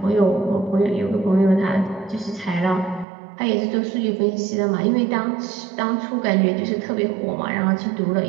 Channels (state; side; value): drops out; left; at 3.1 s